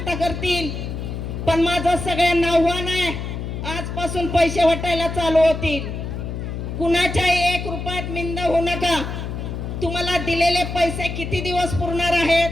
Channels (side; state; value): left; noise; hum, 5 dB below the sound